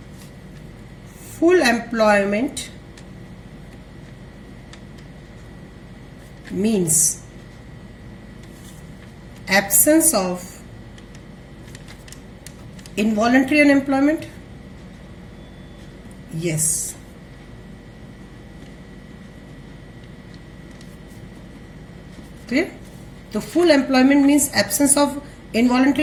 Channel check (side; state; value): both; identical; correlation 1.00